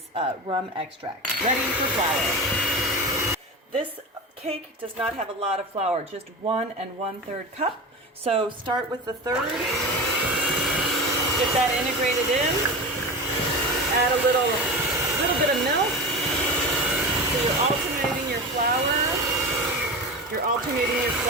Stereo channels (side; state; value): both; normal; correlation 0.27